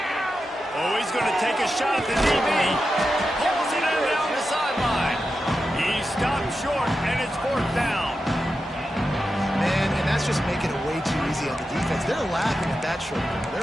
Oh, he's going to take a shot at the DB. Pulls it in down the sideline. He stopped short, and it's fourth down. Man, and that's just making it way too easy on the defense. They're laughing at that short ball.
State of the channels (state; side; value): normal; both; correlation 0.90